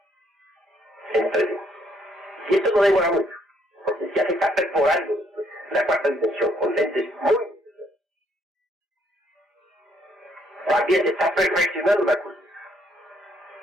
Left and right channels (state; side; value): normal; both; correlation 0.70